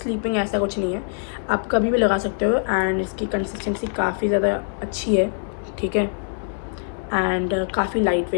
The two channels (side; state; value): right; silent; 62 dB below the other